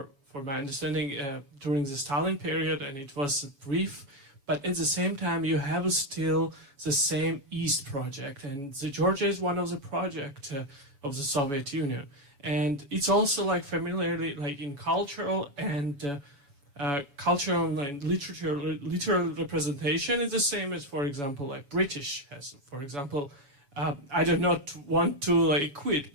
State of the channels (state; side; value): late; left; 7.1 ms